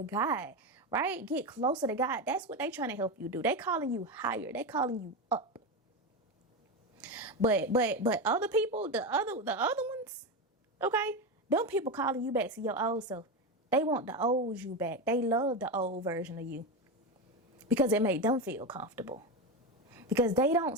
God, right? Get closer to God. That's what they trying to help you do. They calling you higher. They calling you up. But other people, the other ones, okay? Them people calling you back to your old self. They want the old you back. They love the old version of you because it made them feel comfortable. Because they don't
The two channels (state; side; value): normal; both; correlation 0.16